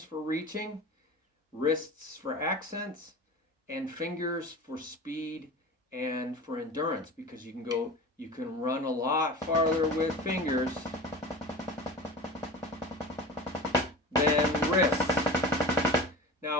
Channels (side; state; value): both; normal; correlation 0.33